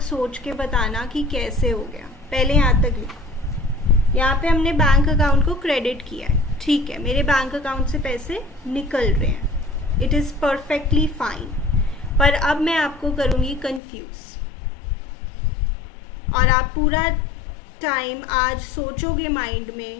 सोच के बताना कि कैसे हो गया। पहले यहाँ तक लिखो। यहाँ पे हमने बैंक अकाउंट को क्रेडिट किया है, ठीक है, मेरे बैंक अकाउंट से पैसे निकल रहे हैं, इट इज़ परफेक्टली फाइन। पर अब मैं आपको करूँगी कंफ्यूज, और आप पूरा टाइम आज सोचोगे माइंड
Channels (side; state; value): right; drops out; at 13.8 s